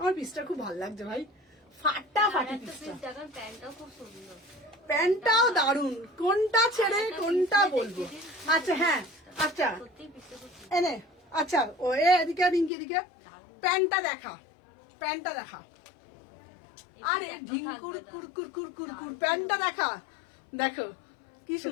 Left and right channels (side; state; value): right; drops out; at 12.7 s